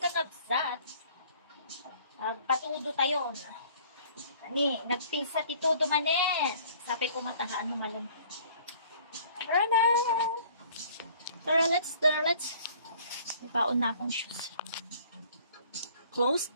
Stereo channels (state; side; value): inverted; both; correlation -0.54